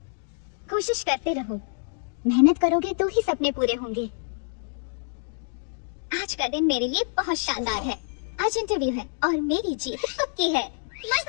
कोशिश करते रहो, मेहनत करोगे तो ही सपने पूरे होंगे। आज का दिन मेरे लिए बहुत शानदार है। आज इंटरव्यू है और मेरी जीत पक्की है।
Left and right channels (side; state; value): right; silent; digital silence